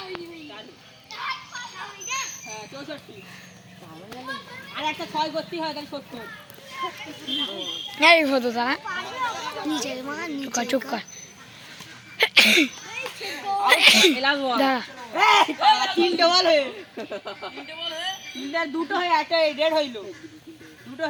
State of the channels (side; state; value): both; identical; correlation 1.00